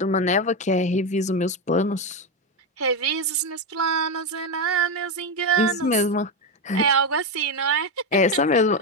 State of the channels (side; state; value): both; normal; correlation 0.10